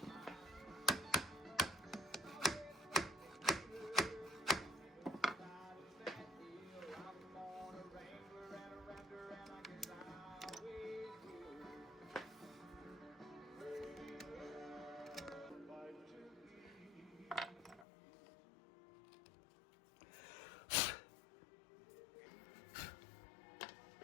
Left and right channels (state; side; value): drops out; right; at 17.9 s